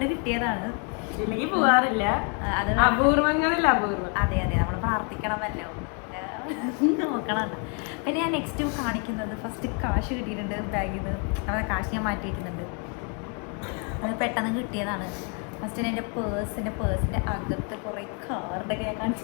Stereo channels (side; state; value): right; quieter; 38.0 dB